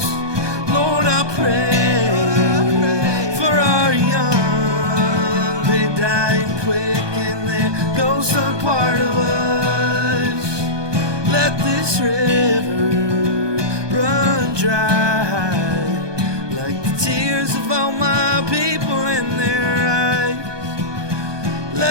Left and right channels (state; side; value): late; left; 1.2 ms